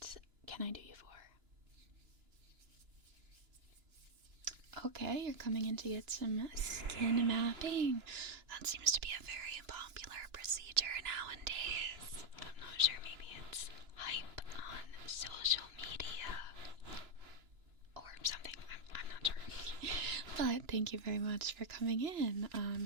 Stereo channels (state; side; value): late; left; 2.9 ms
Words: can I do you for? Okay, you're coming in to get some skin mapping. That seems to be a very popular procedure nowadays. I'm not sure, maybe it's hype on social media or something. I'm not sure. But thank you very much for coming in.